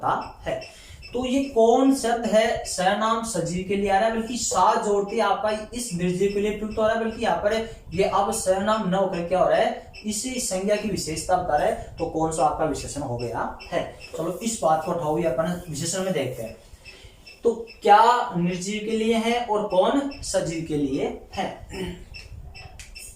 है। तो ये कौन शब्द है सर्वनाम सजीव के लिए आ रहा है, बल्कि सा जोड़ते आपका इस निर्जीव के लिए प्रयुक्त हो रहा है। बल्कि यहाँ पर ये अब सर्वनाम न होकर क्या हो रहा है, इसी संज्ञा की विशेषता बता रहा है। तो कौन सा आपका विशेषण हो गया है। चलो इस बात को उठाओ, अपन विशेषण में देखते हैं। तो क्या निर्जीव के लिए है और कौन सजीव के लिए है।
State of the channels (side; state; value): both; identical; correlation 1.00